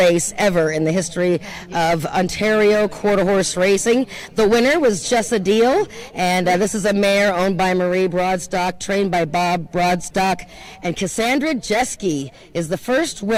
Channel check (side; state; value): both; identical; correlation 1.00